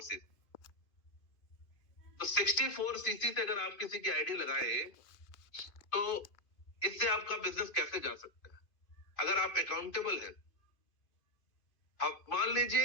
सीसी। तो 64 सीसी से अगर आप किसी की आईडी लगाए तो इससे आपका बिजनेस कैसे जा सकता है अगर आप अकाउंटेबल हैं। आप मान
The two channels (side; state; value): right; late; 2.5 ms